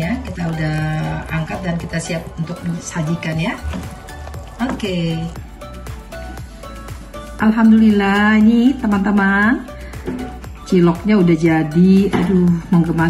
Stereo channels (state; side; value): identical; both; correlation 1.00